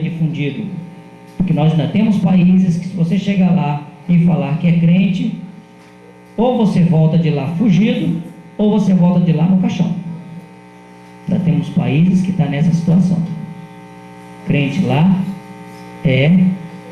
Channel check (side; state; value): both; identical; correlation 1.00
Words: Porque nós ainda temos países que, se você chegar lá e falar que é crente, ou você volta de lá fugido, ou você volta de lá no caixão. Ainda temos países que estão nessa situação. Crente lá é